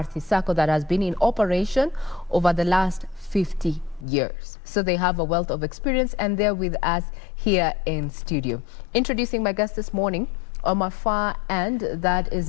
Sacco that has been in operation over the last 50 years. So they have a wealth of experience, and they're with us here in studio. Introducing my guest this morning, on my far end, that is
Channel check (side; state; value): right; drops out; at 4.0 s